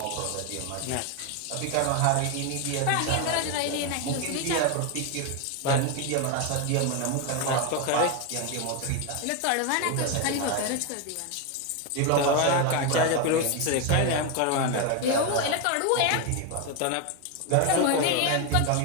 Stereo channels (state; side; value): different; both; correlation 0.02